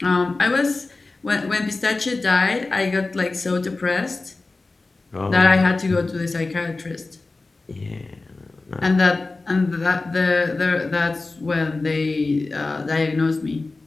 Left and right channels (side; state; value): right; quieter; 3.5 dB